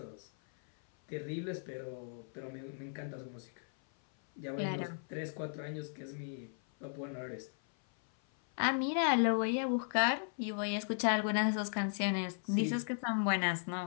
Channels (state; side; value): silent; right; 54 dB below the other